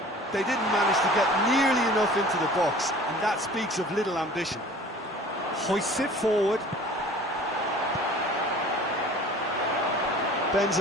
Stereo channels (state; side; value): normal; both; correlation 0.46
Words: They didn't manage to get nearly enough into the box, and that speaks of little ambition. Hoists it forward.